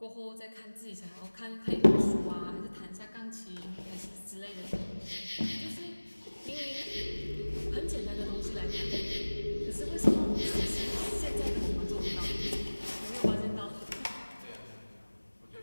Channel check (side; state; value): both; inverted; correlation -1.00